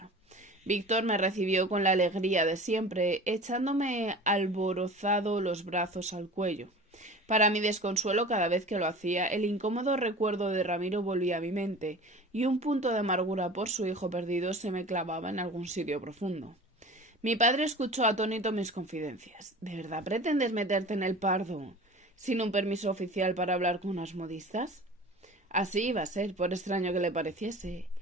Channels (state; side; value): normal; both; correlation 0.39